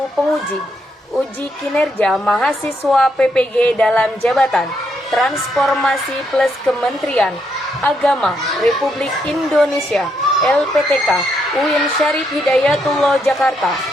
penguji uji kinerja mahasiswa PPG dalam jabatan Transformasi Plus Kementerian Agama Republik Indonesia LPTK UIN Syarif Hidayatullah Jakarta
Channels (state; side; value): normal; both; correlation 0.77